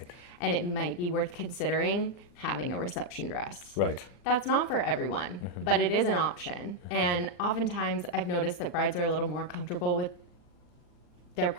And it might be worth considering having a reception dress. Right. That's not for everyone, but it is an option. And oftentimes I've noticed that brides are a little more comfortable with their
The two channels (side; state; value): right; late; 40 ms